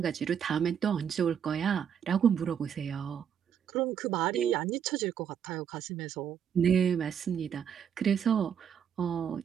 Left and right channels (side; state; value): left; quieter; 8.2 dB